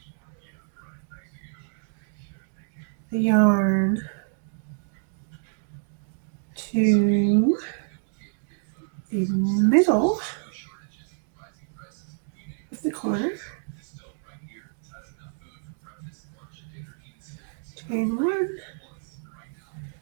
the yarn to the middle of the corner. Chain 1,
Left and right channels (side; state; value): left; silent; digital silence